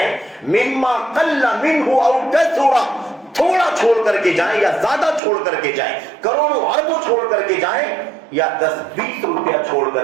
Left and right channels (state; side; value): drops out; left; at 5.2 s